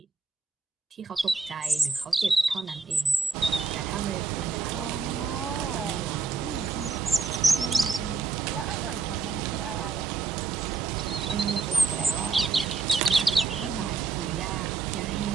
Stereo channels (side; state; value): left; quieter; 4.5 dB